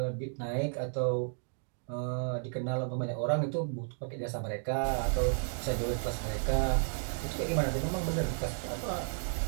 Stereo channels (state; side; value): silent; left; digital silence